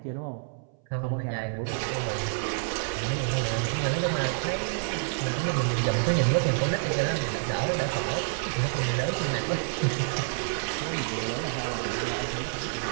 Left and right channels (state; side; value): silent; left; 59 dB below the other